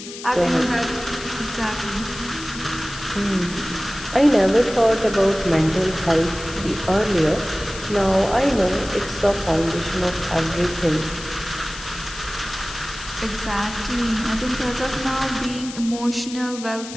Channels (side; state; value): left; noise; hiss, 12 dB below the sound